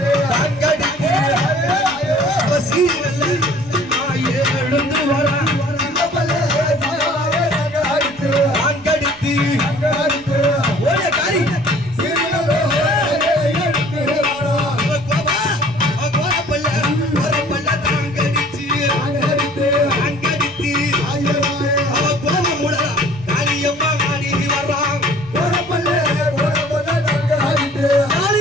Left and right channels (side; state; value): right; noise; rumble, 24 dB below the sound